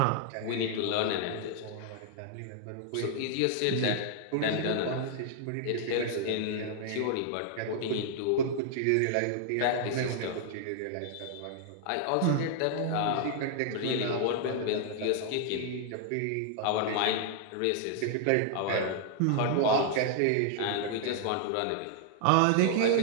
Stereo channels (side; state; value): both; different; correlation -0.01